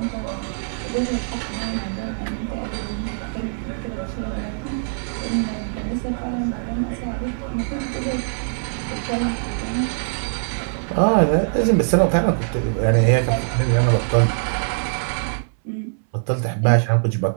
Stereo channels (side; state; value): left; silent; 63 dB below the other